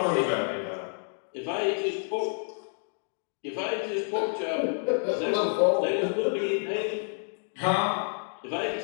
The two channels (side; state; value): right; silent; 59 dB below the other